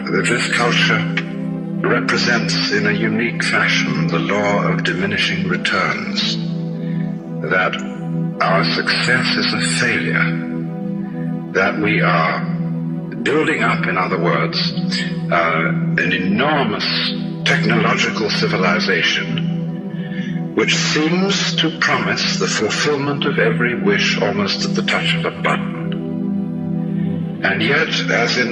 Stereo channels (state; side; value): identical; both; correlation 1.00